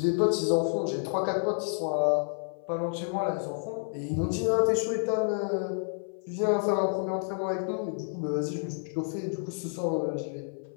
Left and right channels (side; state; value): right; silent; 55 dB below the other